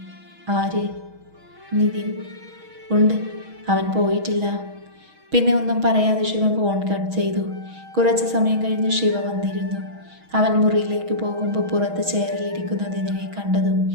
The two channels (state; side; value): late; left; 6.3 ms